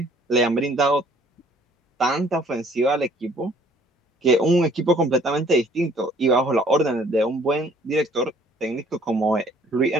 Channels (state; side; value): normal; both; correlation 0.58